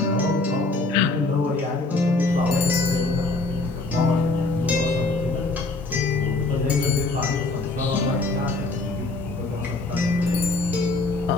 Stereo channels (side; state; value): right; quieter; 3.1 dB